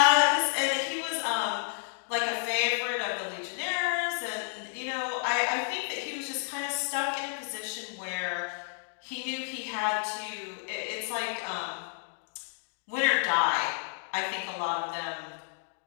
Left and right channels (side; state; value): right; silent; digital silence